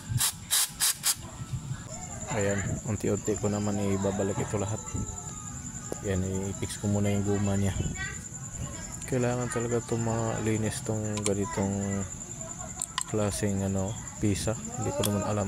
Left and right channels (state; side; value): identical; both; correlation 1.00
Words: Ayan, unti-unti ko naman ibabalik ito lahat. Yan, i-fix ko muna yung guma niya. Kailangan talaga ito malinis tong ganitong klaseng ano, pisa. Hindi ko naman